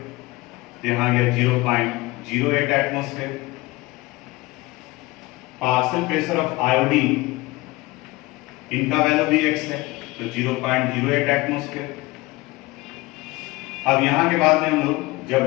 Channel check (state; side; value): quieter; right; 21.2 dB